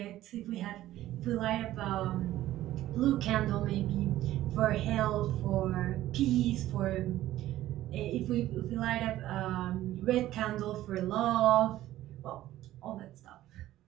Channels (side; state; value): left; quieter; 14.4 dB